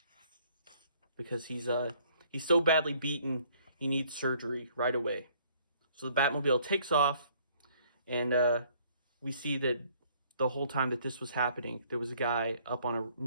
because he's so badly beaten he needs surgery right away. So the Batmobile takes off, and we see that the whole time that this was happening, there was a guy up on a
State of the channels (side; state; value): both; inverted; correlation -0.61